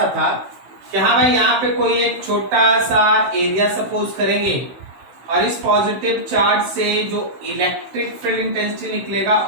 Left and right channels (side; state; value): left; late; 16 ms